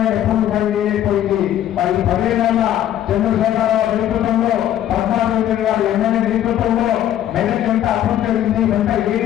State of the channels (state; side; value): quieter; right; 11.6 dB